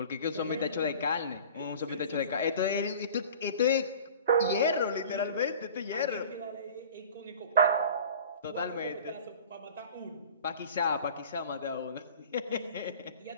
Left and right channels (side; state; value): both; inverted; correlation -0.42